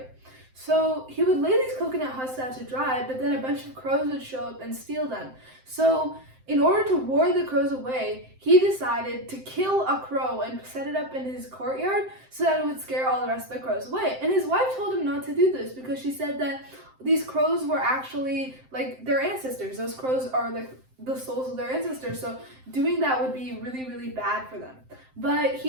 So he would lay these coconut husks out to dry, but then a bunch of crows would show up and steal them. So in order to ward the crows away, he decided to kill a crow and set it up in his courtyard so that it would scare all the rest of the crows away. And his wife told him not to do this because she said that these crows were actually like their ancestors. Those crows are like the souls of their ancestors, so doing that would be really, really bad for them. But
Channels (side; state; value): left; late; 7.7 ms